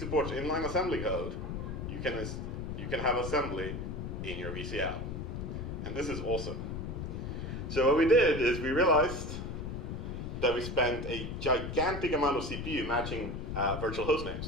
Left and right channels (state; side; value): noise; left; rumble, 5 dB below the sound